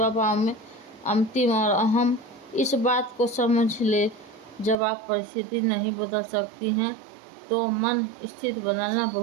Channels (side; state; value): left; drops out; at 4.8 s